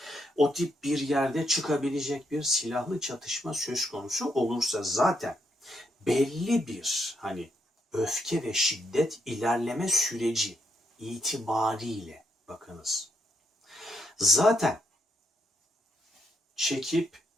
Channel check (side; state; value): both; normal; correlation 0.77